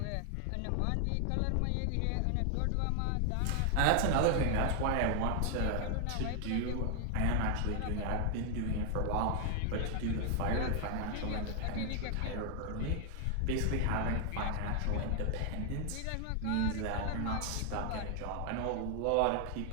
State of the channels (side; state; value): both; different; correlation 0.00